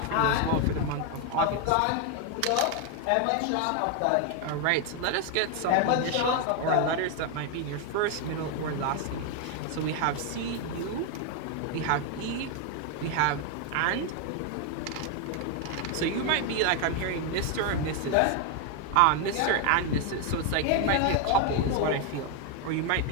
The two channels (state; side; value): different; both; correlation 0.01